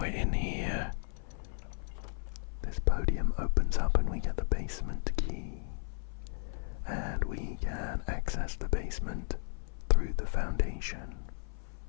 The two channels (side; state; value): right; silent; 55 dB below the other